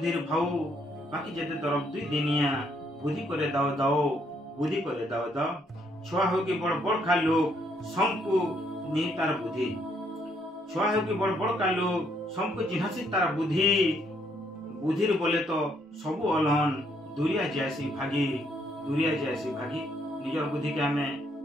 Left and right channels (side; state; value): both; normal; correlation 0.71